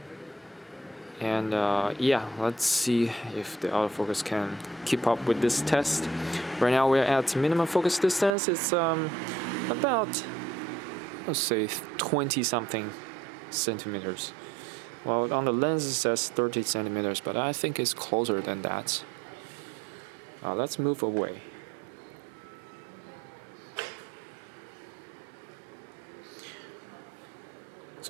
And yeah, let's see if the autofocus can keep up with this test. Right now we're at minimum focus distance. It's about, let's say, 20 something centimeters. Well, on the lens it says 30 centimeters, but I think it's closer than that. Let's move away.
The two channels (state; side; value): drops out; left; at 8.3 s